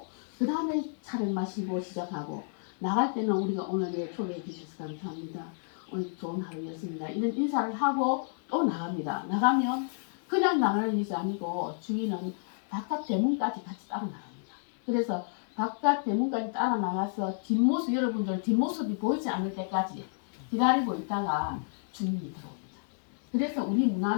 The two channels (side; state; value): right; silent; digital silence